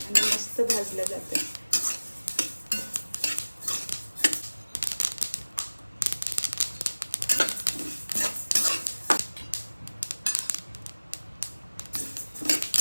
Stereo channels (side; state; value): both; inverted; correlation -1.00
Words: मस्त भाजलं जातं।